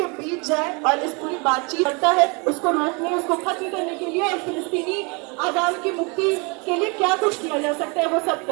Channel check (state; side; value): quieter; left; 30.8 dB